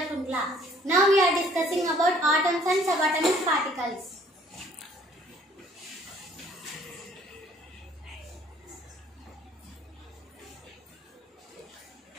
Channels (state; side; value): normal; both; correlation 0.58